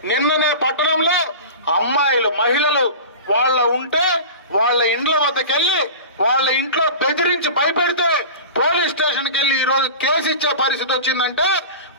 నిన్ననే పట్టణంలో అమ్మాయిలు, మహిళలు వాళ్ళ ఇండ్ల వద్దకెళ్లి వాళ్ళ ఇంట్లో బెదిరించి భయపెడితే పోలీస్ స్టేషన్కి వెళ్ళి ఈ రోజు కేసు ఇచ్చే పరిస్థితి వచ్చిందంటే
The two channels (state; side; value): inverted; both; correlation -0.33